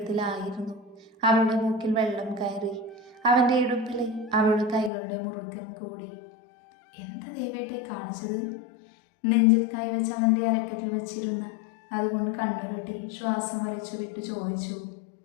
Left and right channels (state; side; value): drops out; right; at 4.9 s